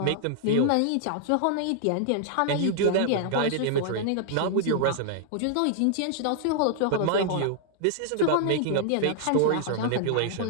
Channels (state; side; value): different; both; correlation -0.01